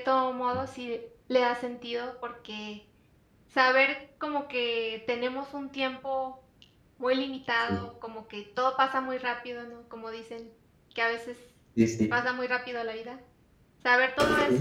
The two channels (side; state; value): both; identical; correlation 1.00